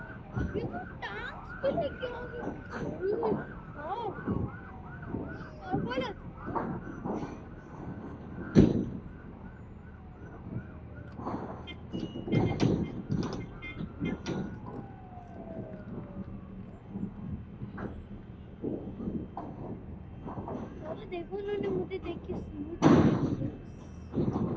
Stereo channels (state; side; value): identical; both; correlation 1.00